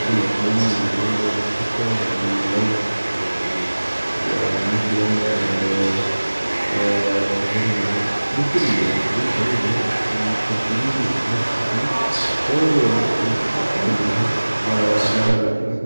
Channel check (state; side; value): inverted; both; correlation -1.00